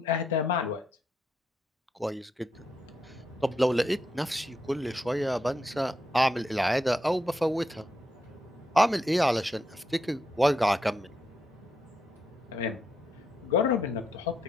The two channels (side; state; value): both; normal; correlation 0.81